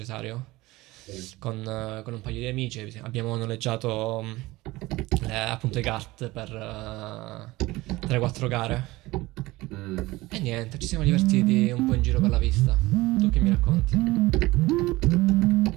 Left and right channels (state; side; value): quieter; left; 19.7 dB